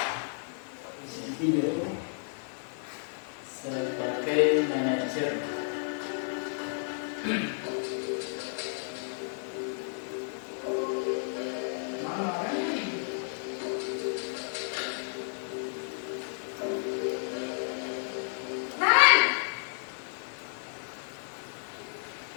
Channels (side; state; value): right; silent; digital silence